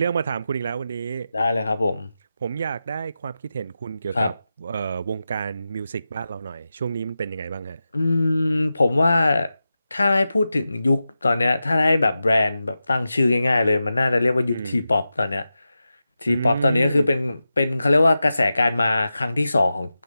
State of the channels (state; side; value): inverted; both; correlation -0.92